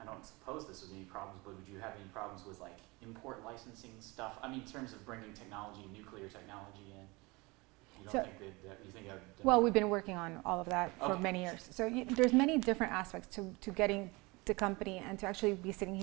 I don't suppose this would be any problems, but would you have any problems with like import licensing stuff? I mean, in terms of bringing technology, nuclear technology in. You don't think that you think? Well, we've been working on all of that for many years. So there's many different aspects to getting the company, and to actually be sitting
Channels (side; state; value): left; quieter; 24.7 dB